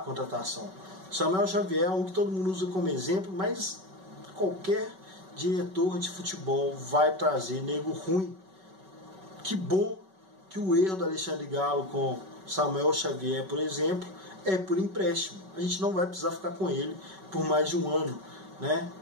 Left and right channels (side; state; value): left; late; 5.3 ms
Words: Samuel Xavier é um que todo mundo usa como exemplo, mas qualquer diretor de futebol vai trazer nego ruim. Que bom que o erro do Alexandre Galo com Samuel Xavier, por exemplo, é por empréstimo. A gente não vai precisar ficar com ele por mais de um ano, né?